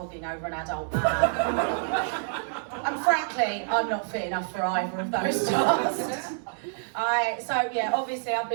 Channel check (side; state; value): left; silent; digital silence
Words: over an adult man. And frankly, I'm not fit enough for either of those tasks. So yeah, obviously I've